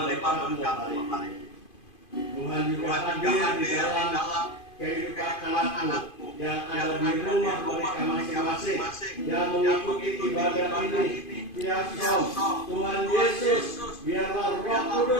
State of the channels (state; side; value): late; right; 2.5 ms